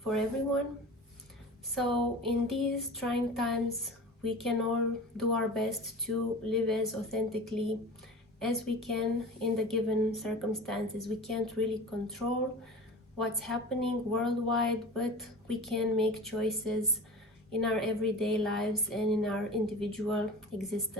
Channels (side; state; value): both; normal; correlation 0.36